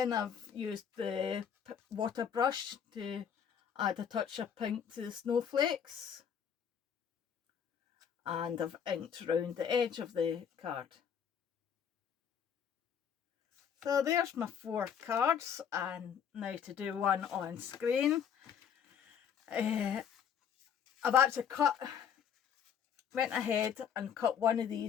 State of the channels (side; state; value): right; quieter; 8.0 dB